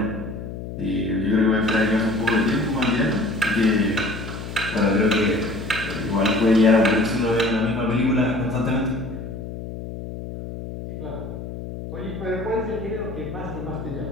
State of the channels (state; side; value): noise; left; hum, 9 dB below the sound